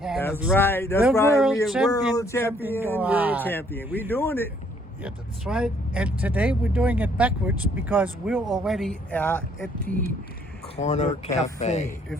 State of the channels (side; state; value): both; normal; correlation 0.65